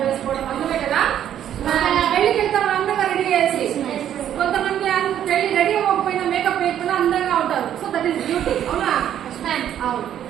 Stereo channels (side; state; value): left; quieter; 10.5 dB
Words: వేసుకోవడం అందమే కదా. పెళ్లికి వెళ్తాం అందంగా రెడీ చేసి. కొంతమంది పెళ్లి రెడీ అవ్వకపోయినా మేకప్ వేయకుండా అందంగా ఉంటారు. So that is beauty. అవునా? అవును.